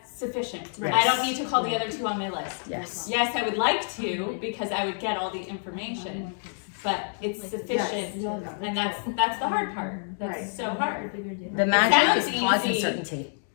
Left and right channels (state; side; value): silent; right; digital silence